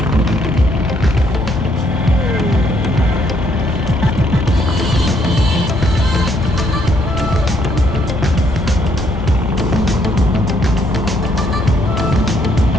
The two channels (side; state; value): both; normal; correlation 0.70